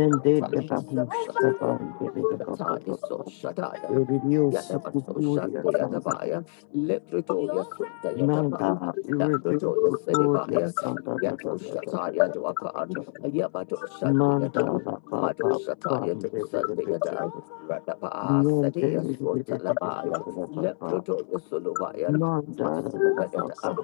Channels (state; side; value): silent; right; 60 dB below the other